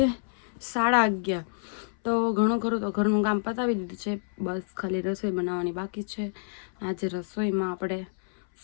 11:30. તો ઘણું ખરું તો ઘરનું કામ પતાવી દીધું છે, બસ ખાલી રસોઈ બનાવવાની બાકી છે. આજે રસોઈમાં આપણે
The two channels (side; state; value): right; silent; 59 dB below the other